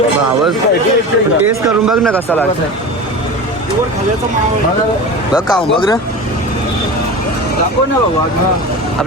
आवाज टेस्ट करून बघ ना कसा लागतो बघ का बघ ना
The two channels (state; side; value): normal; both; correlation 0.30